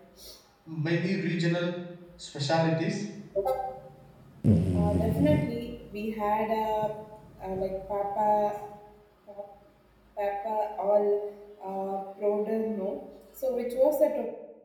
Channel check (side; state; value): both; identical; correlation 1.00